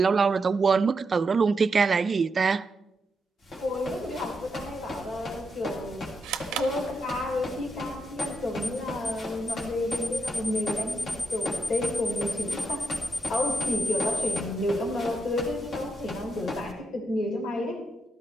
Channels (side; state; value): both; normal; correlation 0.83